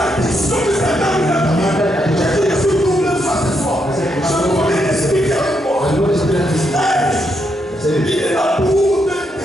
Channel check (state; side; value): normal; both; correlation 0.79